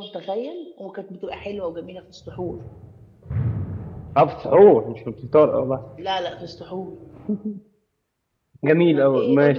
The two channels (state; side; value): identical; both; correlation 1.00